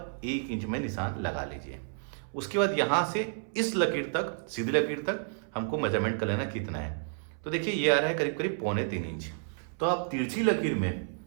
1 इंच में निशान लगा लीजिए। उसके बाद यहाँ से इस लकीर तक, सीधी लकीर तक हमको मेजरमेंट कर लेना कितना है। तो देखिए ये आ रहा है करीब करीब 2.25 इंच। तो आप तिरछी लकीर में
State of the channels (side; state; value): left; silent; 57 dB below the other